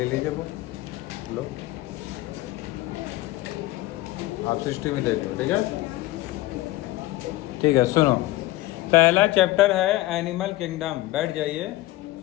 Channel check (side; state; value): right; quieter; 17.9 dB